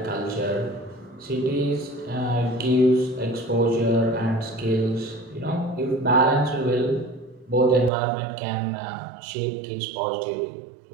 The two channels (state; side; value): drops out; left; at 7.9 s